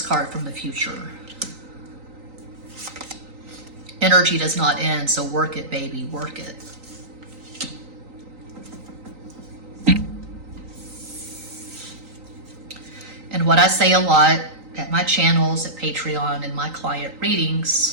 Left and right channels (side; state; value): left; late; 3.9 ms